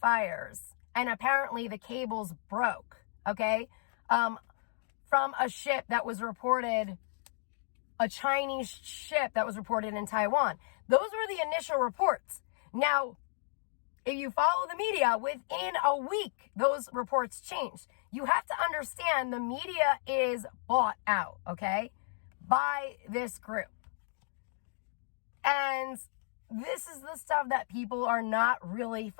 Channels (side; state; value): right; silent; digital silence